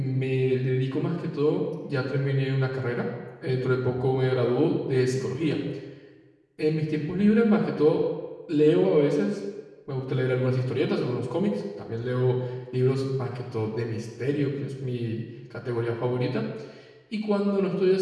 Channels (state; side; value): identical; both; correlation 1.00